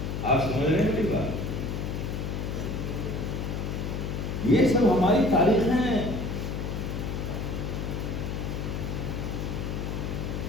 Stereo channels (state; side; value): noise; left; hum, 3 dB below the sound